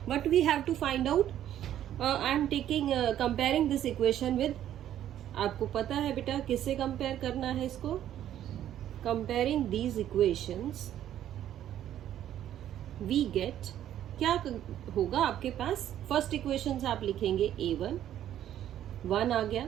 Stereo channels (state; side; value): quieter; left; 11.4 dB